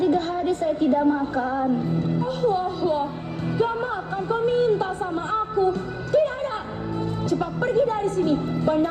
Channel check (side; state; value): both; identical; correlation 1.00